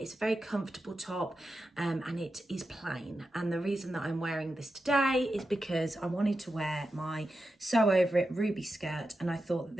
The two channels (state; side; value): normal; both; correlation 0.90